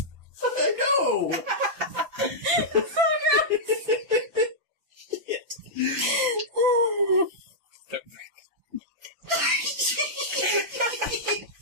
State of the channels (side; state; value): left; late; 5.9 ms